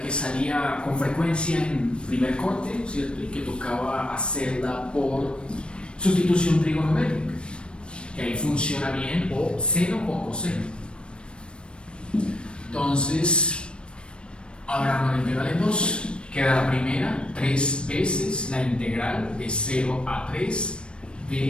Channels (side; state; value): right; late; 0.056 ms